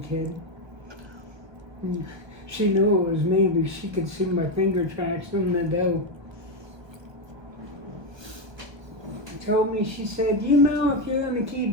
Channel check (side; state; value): left; late; 1.2 ms